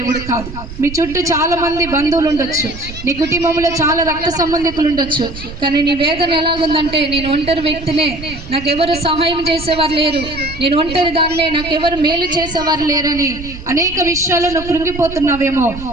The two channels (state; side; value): noise; right; rumble, 13 dB below the sound